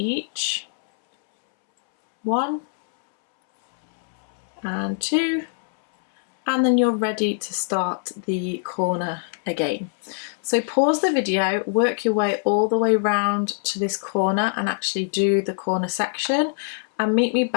1 and 2, and then you're ready to start the corner again. So pause the video, work your way all the way round to this corner and actually do the corner section, and meet me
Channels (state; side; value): silent; right; 63 dB below the other